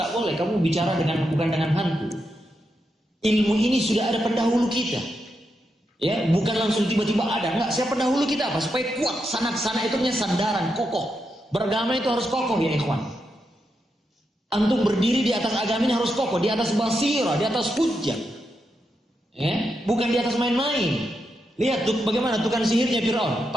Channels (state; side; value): normal; both; correlation 0.84